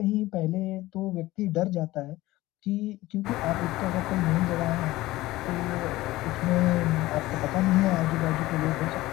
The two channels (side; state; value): right; quieter; 17.8 dB